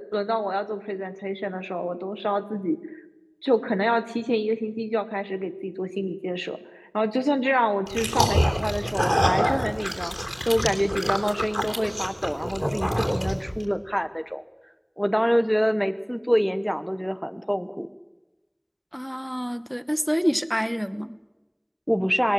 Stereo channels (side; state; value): both; identical; correlation 1.00